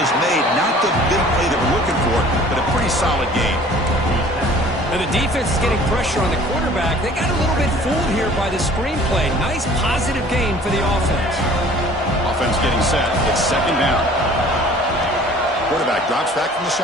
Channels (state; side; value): normal; both; correlation 0.50